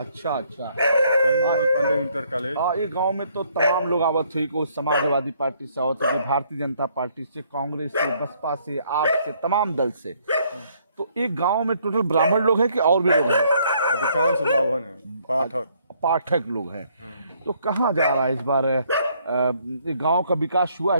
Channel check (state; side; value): inverted; both; correlation -0.67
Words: अच्छा। Pandey inter college. ये गांव में तो तमाम लोग आवत हुई, कोई समाजवादी पार्टी से आवत हुई, भारतीय जनता पार्टी से, कांग्रेस से, बसपा से, आप से, तमाम दल से। तो एक गांव में टोटल ब्राह्मण लोग हैं कि और भी लोग हैं? अधिकांश ब्राह्मण हैं, पाठक लोग हैं। तो कहाँ जा रहा है इस बार गांव का विकास हुआ